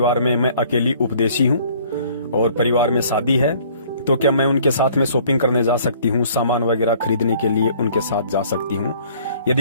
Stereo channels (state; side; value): inverted; both; correlation -0.56